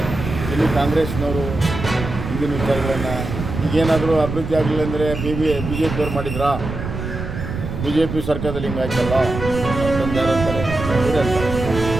ಇಲ್ಲಿ ಕಾಂಗ್ರೆಸ್ನವರು ಹಿಂದಿನ ವಿಚಾರಗಳನ್ನು ಈಗೇನಾದರೂ ಅಭಿವೃದ್ಧಿ ಆಗಲಿಲ್ಲ ಅಂದರೆ ಬಿ ಜೆ ಪಿಯವ್ರು ಮಾಡಿದ್ರಾ, ಬಿ ಜೆ ಪಿ ಸರ್ಕಾರದಲ್ಲಿ ಹಿಂಗಾಯ್ತಲ್ಲ ಅಂತಂದು ಯಾರು ಅಂತಾರೆ, ಇವರೇ ಅಂತಾರೆ.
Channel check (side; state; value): right; noise; rumble, 6 dB below the sound